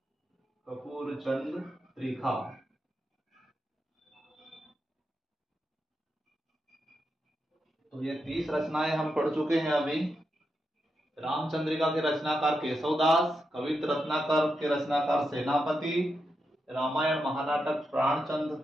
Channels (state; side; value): normal; both; correlation 0.86